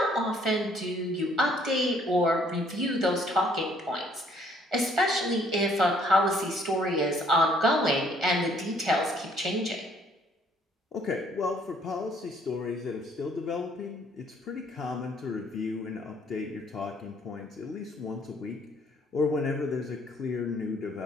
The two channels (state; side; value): normal; both; correlation 0.63